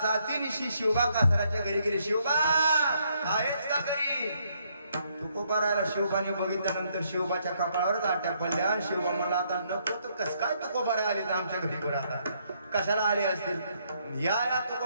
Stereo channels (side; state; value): both; inverted; correlation -0.72